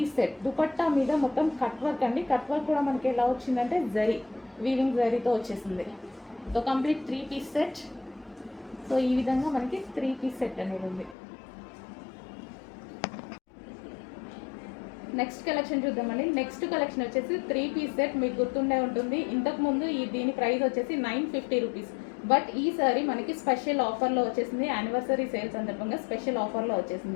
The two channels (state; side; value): drops out; right; at 11.2 s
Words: సెట్. దుపట్టా మీద మొత్తం కట్ వర్క్ అండి. కట్ వర్క్ కూడా మనకి ఎలా వచ్చిందంటే జరీ, వీవింగ్ జరీతో వచ్చేసింది. So complete 3 piece set. So ఈ విధంగా మనకి 3 పీస్ సెట్ అనేది ఉంది. నెక్స్ట్ కలెక్షన్ చూద్దామండి. నెక్స్ట్ కలెక్షన్ వచ్చేసి 3 పీస్ సెట్. మీకు గుర్తుండే ఉంటుంది, ఇంతకుముందు దీని ప్రైస్ వచ్చేసి 950 రూపీస్. బట్ ఈ సారీ మనకి స్పెషల్ ఆఫర్లో వచ్చేసింది, యానివర్సరీ సేల్ సందర్భంగా స్పెషల్ ఆఫర్లో